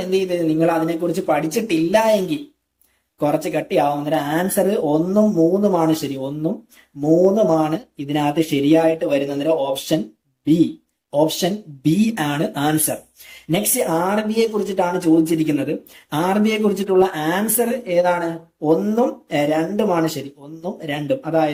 എന്ത് ചെയ്ത് നിങ്ങൾ അതിനെക്കുറിച്ച് പഠിച്ചിട്ടില്ല എങ്കിൽ കുറച്ച് കട്ടിയാവും. അന്നേരം ആൻസർ 1ഉം 3ഉമാണ് ശരി. 1ഉം 3ഉമാണ് ഇതിനകത്ത് ശരിയായിട്ട് വരുന്നത്. അന്നേരം ഓപ്ഷൻ ബി ആണ് ആൻസർ. നെക്സ്റ്റ് RB യെ കുറിച്ചിട്ടാണ് ചോദിച്ചിരിക്കുന്നത്. RB യെ കുറിച്ചിട്ടുള്ള ആൻസർ ഏതാണ്? 1ഉം 2ഉമാണ് ശരി. 1ഉം 2ഉം,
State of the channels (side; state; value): both; identical; correlation 1.00